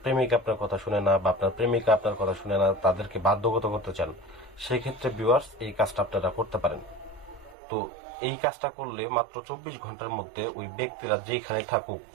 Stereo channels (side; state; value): left; drops out; at 7.6 s